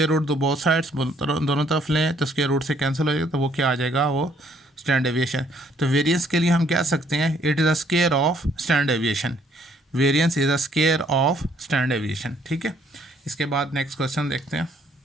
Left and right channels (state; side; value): normal; both; correlation 0.65